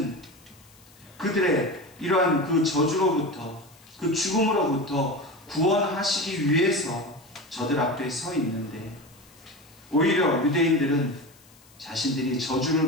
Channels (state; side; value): noise; left; hiss, 27 dB below the sound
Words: 그들의 이러한 그 저주로부터, 그 죽음으로부터 구원하시기 위해서 저들 앞에 서 있는데, 오히려 유대인들은 자신들이